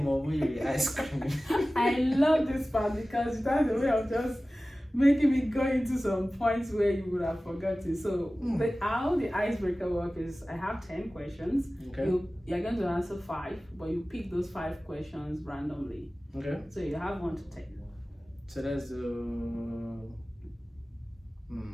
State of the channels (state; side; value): normal; both; correlation 0.96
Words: over your ice cream. I love this part because that's the way of just making me go into some points where you would have forgotten. So how the icebreaker work is, I have 10 questions. Okay. You're going to answer 5, but you pick those 5 questions randomly. Okay. So you have 1 to 10. So that's